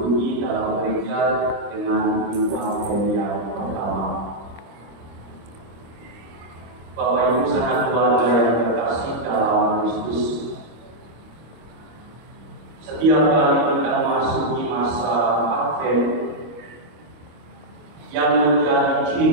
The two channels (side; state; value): left; late; 25 ms